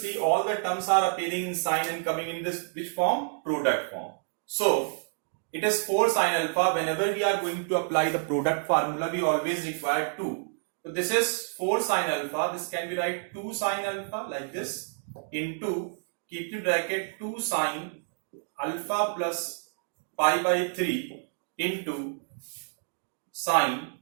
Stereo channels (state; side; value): silent; left; digital silence